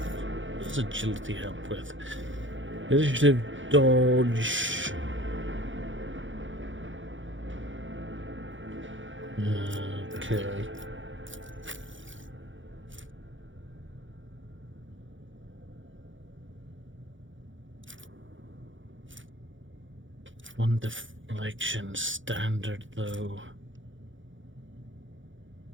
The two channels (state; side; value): late; left; 0.56 ms